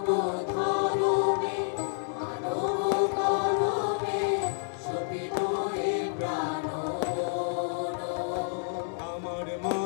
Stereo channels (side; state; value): right; silent; digital silence